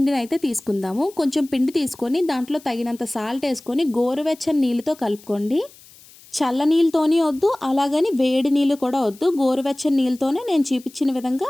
అయితే తీసుకుందాము. కొంచెం పిండి తీసుకొని దాంట్లో తగినంత సాల్ట్ వేసుకొని గోరువెచ్చని నీళ్ళతో కలుపుకోండి. చల్ల నీళ్ళతోనే వద్దు, అలాగని వేడి నీళ్ళు కూడా వద్దు. గోరువెచ్చని నీళ్ళతోనే నేను చూపించిన విధంగా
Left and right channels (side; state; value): left; noise; hiss, 24 dB below the sound